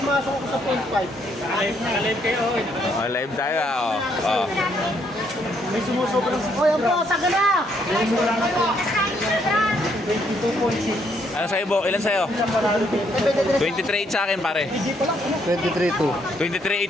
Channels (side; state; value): both; normal; correlation 0.71